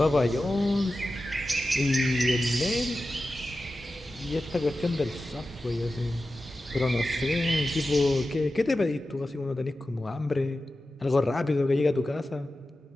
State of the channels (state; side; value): normal; both; correlation 0.93